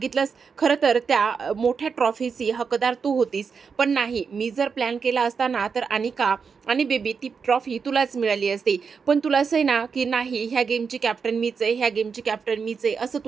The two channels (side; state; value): left; quieter; 5.8 dB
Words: खरं तर त्या मोठ्या ट्रॉफीची हकदार तू होतीस, पण नाही, मी जर प्लॅन केला असता ना तर अनिका आणि बेबी ती ट्रॉफी तुलाच मिळाली असती. पण तुला असं आहे ना की नाही, ह्या गेमची कॅप्टन मीच आहे, ह्या गेमची कॅप्टन मीच आहे, असं